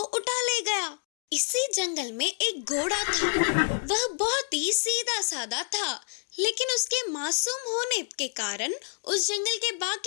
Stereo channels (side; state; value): right; silent; digital silence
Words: ले गया। इसी जंगल में एक घोड़ा था। वह बहुत ही सीधा साधा था, लेकिन उसके मासूम होने के कारण उस जंगल के